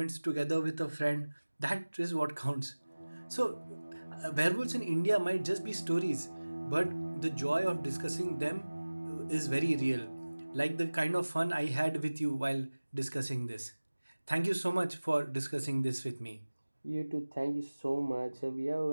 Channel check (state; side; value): inverted; both; correlation -1.00